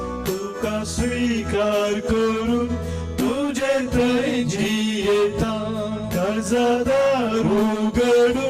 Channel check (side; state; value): both; identical; correlation 1.00